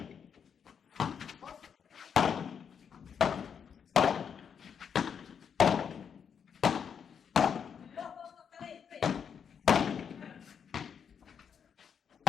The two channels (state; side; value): quieter; right; 7.3 dB